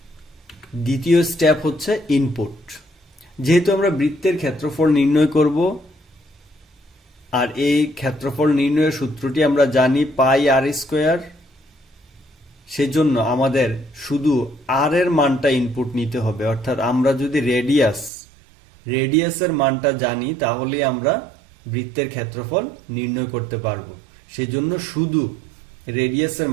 দ্বিতীয় স্টেপ হচ্ছে ইনপুট। যেহেতু আমরা বৃত্তের ক্ষেত্রফল নির্ণয় করব আর এই ক্ষেত্রফল নির্ণয়ের সূত্রটি আমরা জানি পাই আর স্কোয়ার, সেজন্য আমাদের শুধু আর এর মানটা ইনপুট নিতে হবে। অর্থাৎ আমরা যদি রেডিয়াসের মানটা জানি তাহলে আমরা বৃত্তের ক্ষেত্রফল নির্ণয় করতে পারবো। সেজন্য শুধু রেডিয়াসের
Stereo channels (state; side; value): drops out; left; at 18.1 s